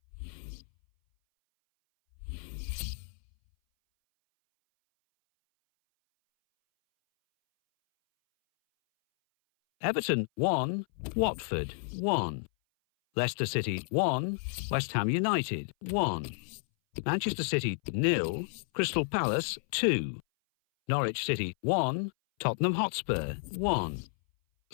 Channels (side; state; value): right; silent; 57 dB below the other